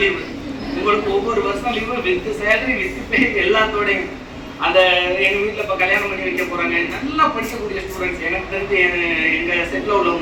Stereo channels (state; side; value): identical; both; correlation 1.00